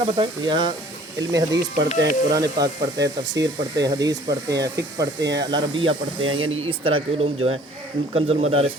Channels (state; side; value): normal; both; correlation 0.53